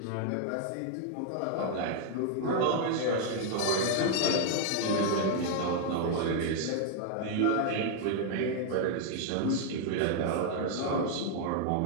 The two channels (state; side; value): different; both; correlation 0.00